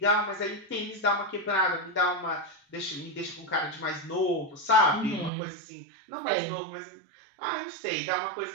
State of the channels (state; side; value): drops out; left; at 5.3 s